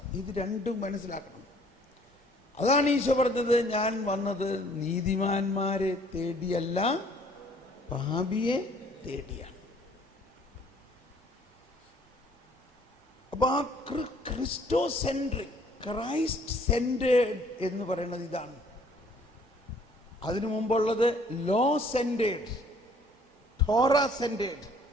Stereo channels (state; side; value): normal; both; correlation 0.58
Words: ഇത് രണ്ടും മനസ്സിലാക്കണം. അതാണ് ഈശോ പറഞ്ഞത്, ഞാൻ വന്നത് നീതിമാന്മാരെ തേടിയല്ല പാപിയെ തേടിയാണ്. അപ്പൊ അപ്പൊ ആ ക്രിസ്റ്റോ സെൻട്രിക്, ക്രൈസ്റ്റ് സെന്റേഡ് എന്ന് പറയുന്നത് ഇതാണ്. അതിനു മുമ്പുള്ളത് ലോ സെന്റേഡ്, ടോറ സെന്റേഡ്,